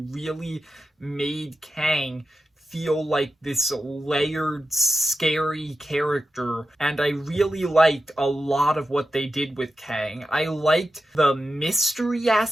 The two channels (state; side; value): normal; both; correlation 0.91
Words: made Kang feel like this layered, scary character, and I really liked a lot of what they did with Kang. I liked the mystery